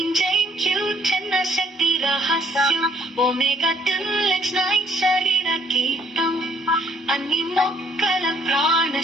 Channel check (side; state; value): both; normal; correlation 0.63